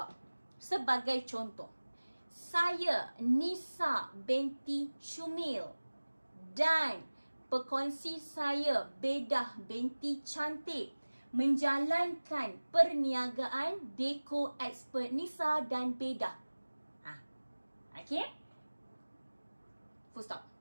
Sebagai contoh, saya Nisa binti Syumil dan pekongsi saya Bedah binti Cantik menjalankan perniagaan Deco Expert Nisa dan Bedah. Okay? Full stop.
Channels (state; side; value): inverted; both; correlation -1.00